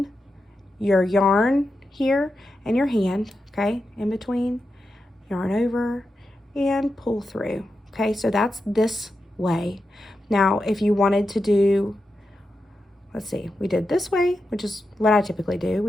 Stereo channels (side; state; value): both; normal; correlation 0.88